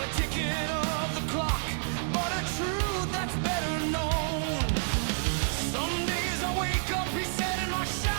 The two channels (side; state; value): left; silent; digital silence